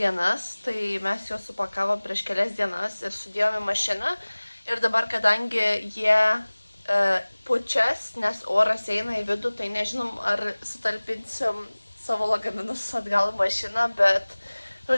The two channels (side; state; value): both; inverted; correlation -1.00